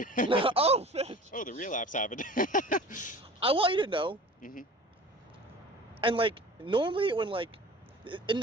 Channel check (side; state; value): both; normal; correlation 0.42